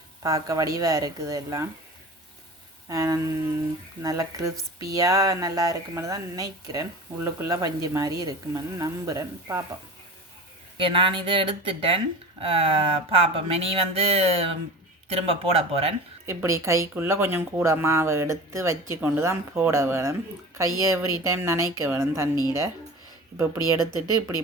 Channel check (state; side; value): normal; both; correlation 0.35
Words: பார்க்க வடிவாக இருக்குது. எல்லாம் நல்லா கிறிஸ்பியாக நல்லா இருக்குமென்னு தான் நினைக்கிறேன். உள்ளுக்குள்ளே பஞ்சு மாதிரி இருக்குமென்னு நம்புகிறேன். பார்ப்போம். ஓகே, நான் இதை எடுத்துட்டேன். பார்ப்போம். இனி வந்து திரும்ப போட போகிறேன். இப்படி கைக்குள்ளே கொஞ்சம் கூட மாவை எடுத்து வச்சு கொண்டு தான் போட வேணும். கையை எவ்ரி டைம் நனைக்க வேணும் தண்ணியில். இப்போ இப்படி எடுத்துட்டு